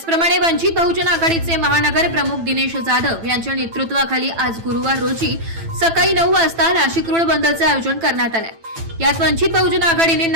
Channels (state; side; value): late; left; 9.0 ms